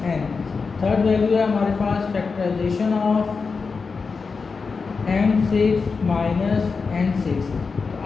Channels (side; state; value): right; quieter; 4.8 dB